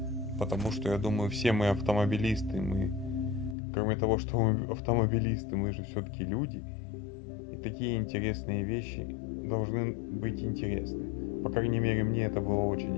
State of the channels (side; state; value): right; drops out; at 3.6 s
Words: Потому что я думаю, все мы автомобилисты, мы, кроме того, что мы автомобилисты, мы же все-таки люди. И такие интересные вещи должны быть интересны. По крайней мере, мне это было